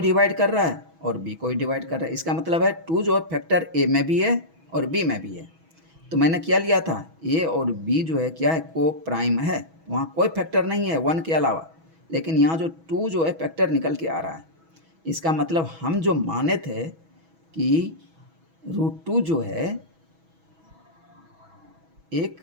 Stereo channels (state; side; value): late; left; 6.1 ms